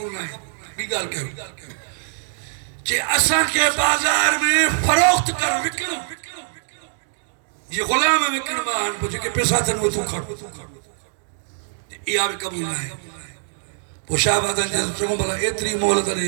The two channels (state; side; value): silent; left; digital silence